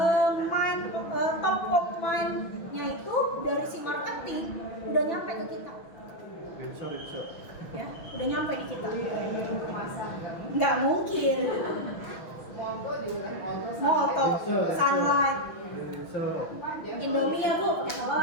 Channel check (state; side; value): late; right; 6.1 ms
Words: Top of mind-nya itu dari si marketing udah nyampe ke kita. Ya, udah nyampe di kita. Nggak mungkin. Molto, Sunlight, Indomie ya Bu,